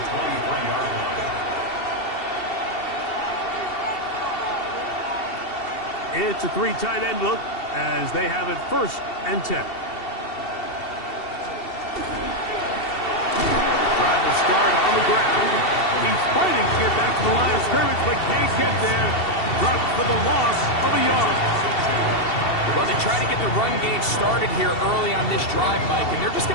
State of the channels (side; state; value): right; late; 2.7 ms